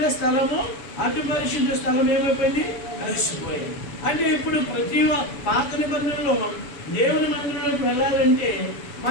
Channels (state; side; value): late; right; 7.1 ms